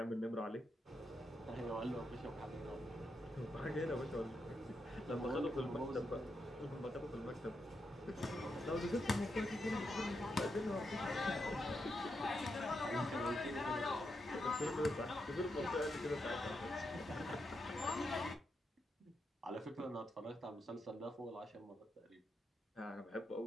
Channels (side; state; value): both; normal; correlation 0.84